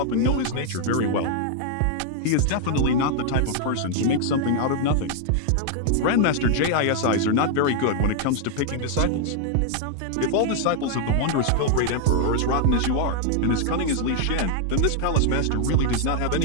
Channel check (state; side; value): different; both; correlation 0.00